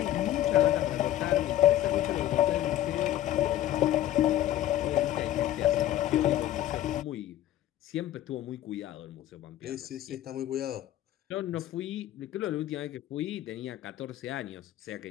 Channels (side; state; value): right; quieter; 13.0 dB